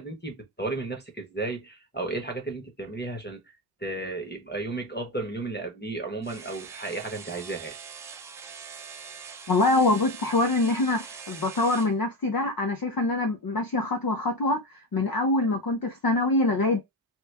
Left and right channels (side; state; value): both; normal; correlation 0.17